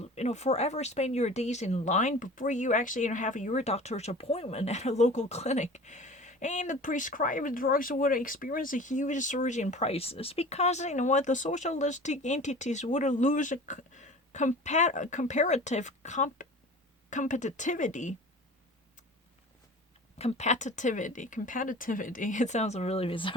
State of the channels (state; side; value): normal; both; correlation 0.40